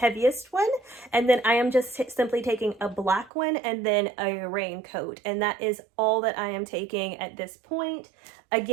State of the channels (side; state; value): left; drops out; at 3.3 s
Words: one, and then I am just simply taking a black one and then a raincoat, and that is all that I am taking at this point.